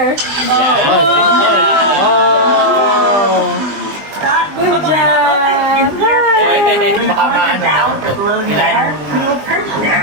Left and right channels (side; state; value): left; late; 20 ms